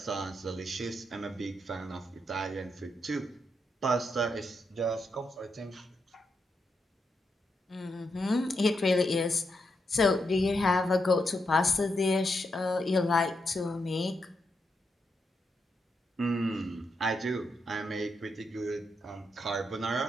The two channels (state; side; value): normal; both; correlation 0.83